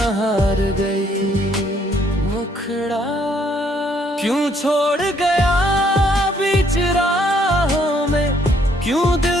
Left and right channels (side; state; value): both; normal; correlation 0.67